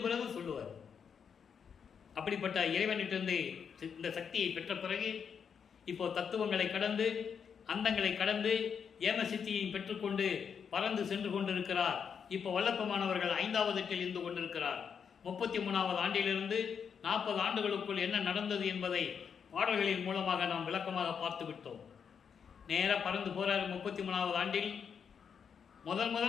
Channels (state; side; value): quieter; right; 6.9 dB